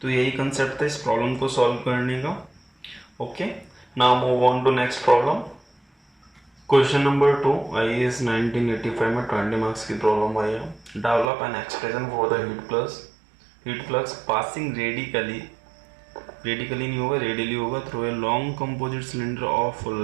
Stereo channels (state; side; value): drops out; left; at 11.2 s